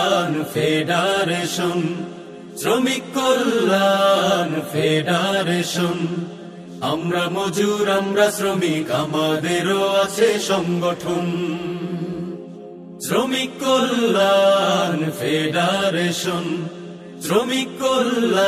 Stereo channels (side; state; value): both; identical; correlation 1.00